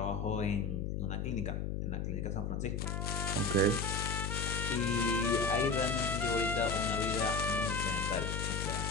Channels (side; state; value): left; noise; hum, 2 dB below the sound